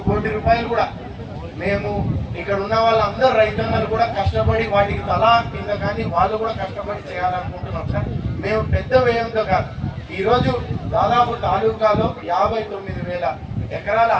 కోటి రూపాయలు కూడా మేము ఇక్కడ ఉన్న వాళ్ళందరూ రైతన్నలు కూడా కష్టపడి వాటికి తలా కింద కానీ వాళ్ళు కూడా కష్టపడి చేయాలనుకుంటున్నాం సార్. మేము పెద్ద వ్యయంతో కాదు, ఈరోజు దాదాపు తాలూకాలో 59,000 ఎకరాల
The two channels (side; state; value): both; identical; correlation 1.00